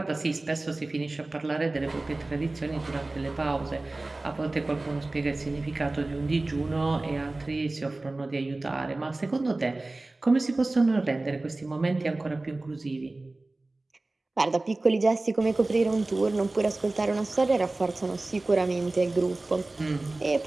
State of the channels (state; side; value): quieter; left; 3.0 dB